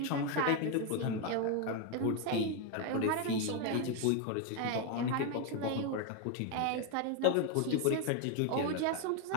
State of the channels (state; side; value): different; both; correlation 0.01